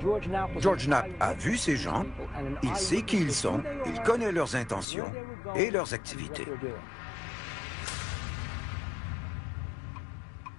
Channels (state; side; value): drops out; right; at 4.9 s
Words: George Knapp a vu ces gens, il sait qui ils sont, il connaît leurs intentions et leurs activités.